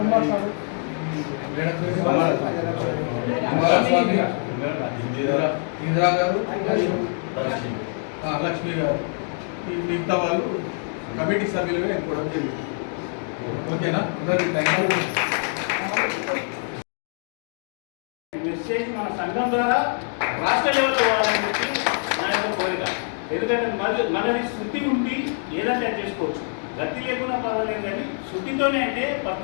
ఇందిరా గారు, లక్ష్మి గారు, ఈ మిగతా వాళ్ళు కమిటీ సభ్యులుగా ఎన్నుకోవడం జరిగింది. ఓకేనా? Thank you. మెసేజ్ మన సంఘం ద్వారా రాష్ట్ర లెవెల్లో పోవాలని చెప్పి నా యొక్క కోరిక. ఎందుకంటే మనది శుద్ధి ఉండి ఏదంటే చేసుకోవచ్చు, గతి లేకుండా పర్వాలేదు, కానీ శుద్ధితోనే అంటే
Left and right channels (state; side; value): silent; right; 55 dB below the other